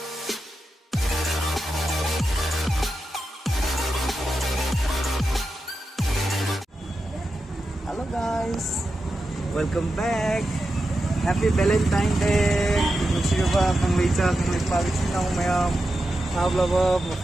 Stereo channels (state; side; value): normal; both; correlation 0.89